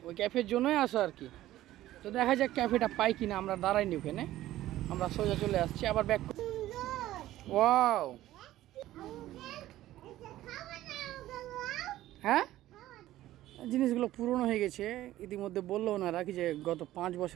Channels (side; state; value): left; quieter; 14.7 dB